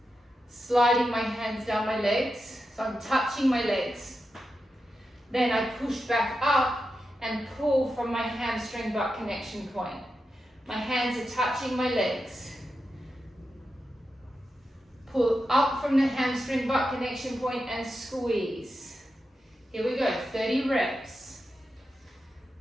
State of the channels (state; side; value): normal; both; correlation 0.89